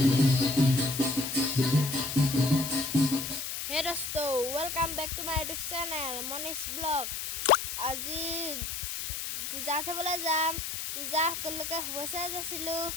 Hey dosto, welcome back to my YouTube channel Manish Vlog. আজি পূজা চাবলৈ যাম। পূজা সকলোকে শুভেচ্ছা যাচিলো।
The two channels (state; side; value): noise; left; hiss, 5 dB below the sound